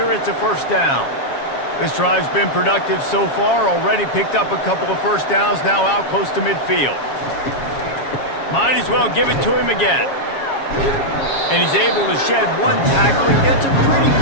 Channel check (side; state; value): right; late; 7.3 ms